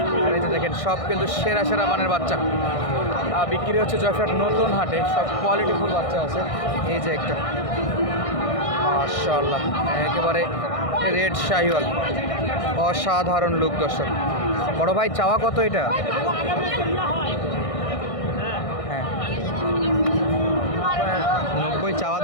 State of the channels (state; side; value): late; right; 1.6 ms